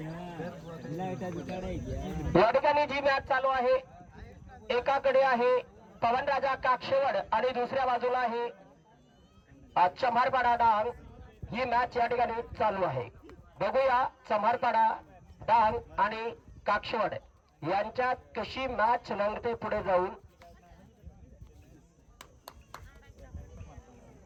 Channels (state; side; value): identical; both; correlation 1.00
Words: या ठिकाणी जी मॅच चालू आहे एकाकडे आहे पवनराजा काक्षेवड आणि दुसऱ्या बाजूला आहे चम्हारपाडा डांग. ही मॅच या ठिकाणी चालू आहे. बघूया चम्हारपाडा डांग आणि काक्षेवड यांच्यात कशी मॅच रंगते पुढे जाऊन.